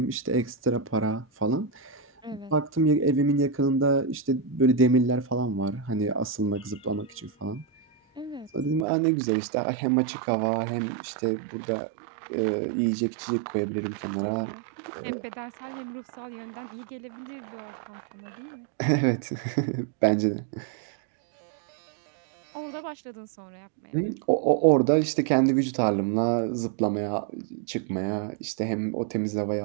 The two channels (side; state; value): left; drops out; at 8.8 s